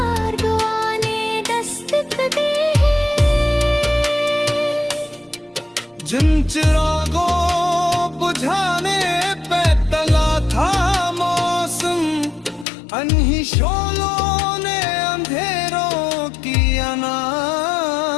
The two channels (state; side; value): drops out; right; at 12.7 s